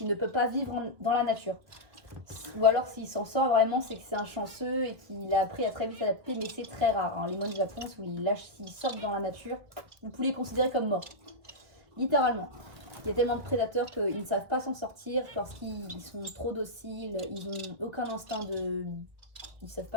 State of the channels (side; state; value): left; late; 1.3 ms